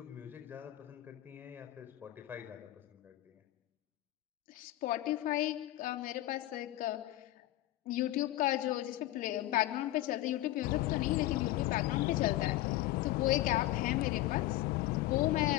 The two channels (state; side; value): quieter; right; 15.7 dB